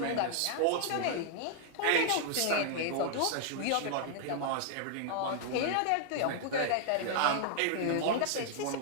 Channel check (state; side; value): different; both; correlation 0.00